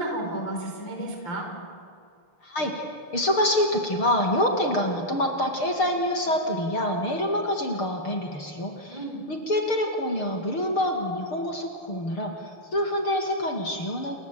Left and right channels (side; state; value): right; late; 6.5 ms